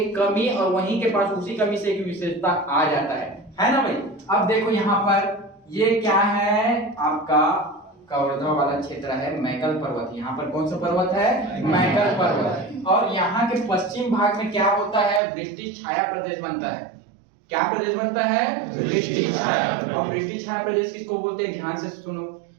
कमी और वहीं के पास उसी कमी से एक विशेषता आ जाता है ना भाई? अब देखो यहाँ पर ये क्या है? आपका कवर्धा वाला क्षेत्र है, मैकल पर्वत। यहाँ पर कौन सा पर्वत है? मैकल पर्वत। और यहाँ के पश्चिम भाग में क्या होता है? वृष्टि छाया प्रदेश बनता है। क्या प्रदेश बनता है? वृष्टि छाया। और वृष्टि छाया प्रदेश किसको बोलते हैं? ध्यान से सुनो।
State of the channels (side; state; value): left; drops out; at 15.2 s